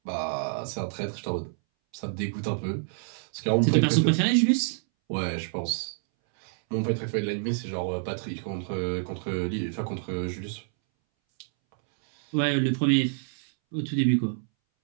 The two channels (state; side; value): silent; left; 60 dB below the other